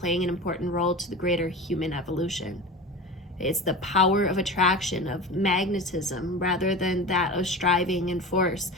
an important role to the greater human evolution. It's the power of attraction, of magnetism, rather than that of striving and force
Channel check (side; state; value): both; normal; correlation 0.31